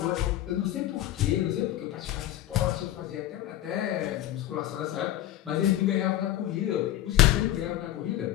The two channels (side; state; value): right; quieter; 13.4 dB